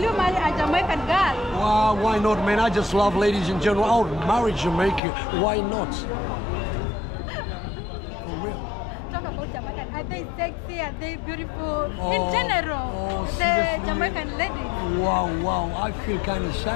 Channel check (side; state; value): right; drops out; at 5.0 s